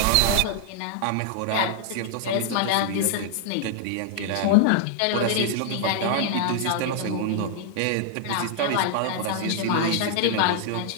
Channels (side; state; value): both; different; correlation 0.00